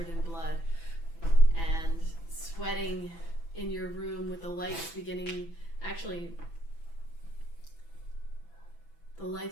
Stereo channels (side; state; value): right; late; 6.0 ms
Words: in blood and sweating in your room with the lights beginning. Actually, the